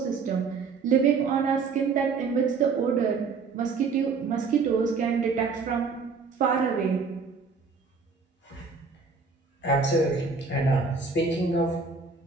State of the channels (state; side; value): quieter; left; 4.9 dB